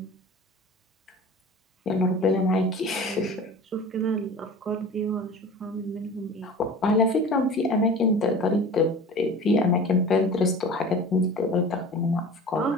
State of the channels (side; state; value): both; normal; correlation 0.38